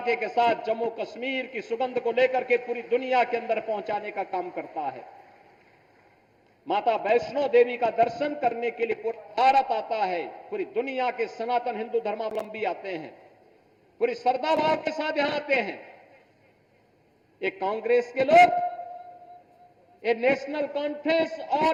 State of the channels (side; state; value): both; identical; correlation 1.00